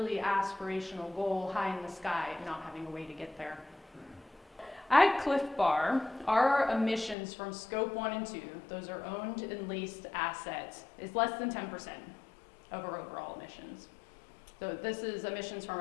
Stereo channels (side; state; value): right; drops out; at 7.2 s